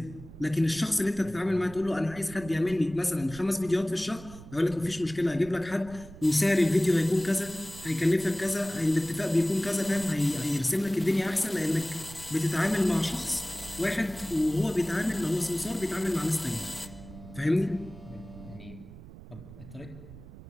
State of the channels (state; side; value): noise; right; rumble, 16 dB below the sound